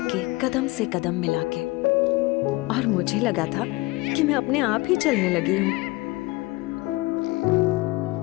के कदम से कदम मिला के, और मुझे लगा था कि मैं अपने आप ही चलने लगी हूँ।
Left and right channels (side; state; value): right; quieter; 22.1 dB